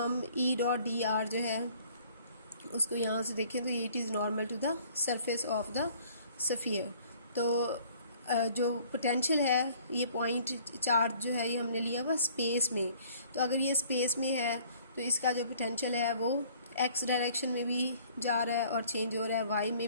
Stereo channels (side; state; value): both; inverted; correlation -0.55